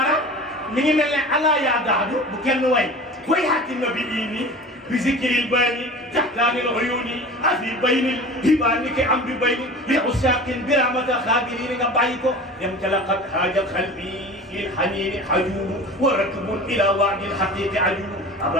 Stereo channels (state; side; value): normal; both; correlation 0.37